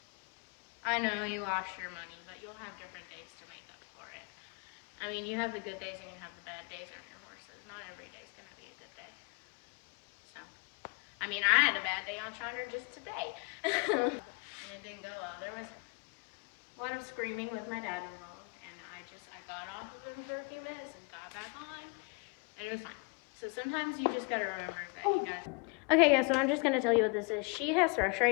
I know you lost your money, but you'll have different days to make up for it. I mean, you have the good days and you have the bad days on your horses. Not every day's gonna be a good day. So, I mean, I had a bad day on Shiner just today. And it didn't go well. There was a lot of screaming with my dad involved, and I got off of him for a few minutes and got back on, and it was fine. So sometimes you just gotta remember that you gotta... Okay, yeah, so I'm just gonna tell you what this is. She has thrush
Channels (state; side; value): quieter; right; 33.0 dB